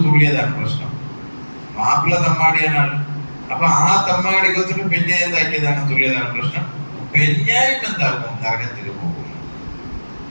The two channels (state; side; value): inverted; both; correlation -1.00